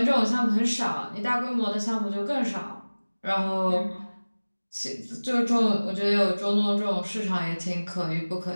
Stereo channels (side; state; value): both; inverted; correlation -1.00